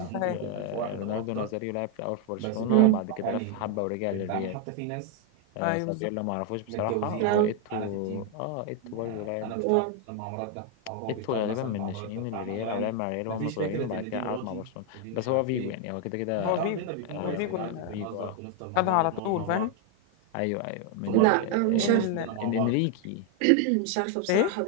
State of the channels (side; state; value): both; different; correlation 0.01